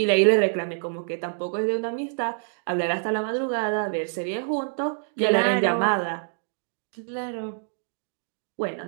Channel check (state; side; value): silent; left; digital silence